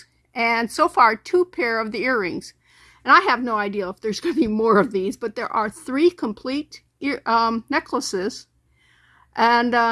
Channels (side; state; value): both; identical; correlation 1.00